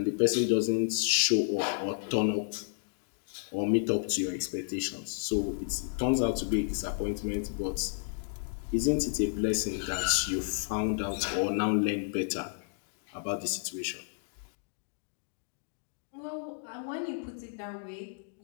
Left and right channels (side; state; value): right; silent; digital silence